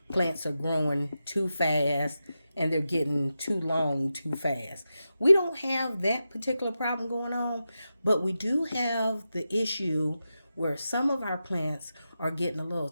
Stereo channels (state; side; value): inverted; both; correlation -0.90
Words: plants are growing too fast and they're getting too long too fast. We don't have that particular problem going on, but we do have the issue where some of our plants are getting a little